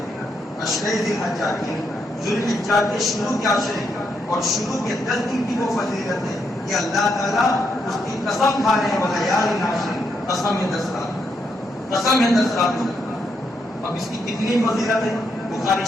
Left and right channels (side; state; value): both; normal; correlation 0.79